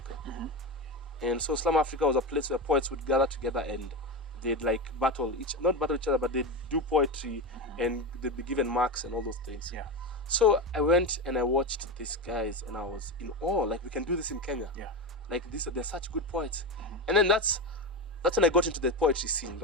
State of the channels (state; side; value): normal; both; correlation 0.18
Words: And so Slum Africa was a place where poets would gather together and they'd like not battle each other, but they'd do poetry and they'd be given marks and all those things. Yeah. So I went and I watched these guys and I was in awe. Like, we can do this in Kenya. Yeah. Like, they're such good poets. And then that's when I got into the poetry scene,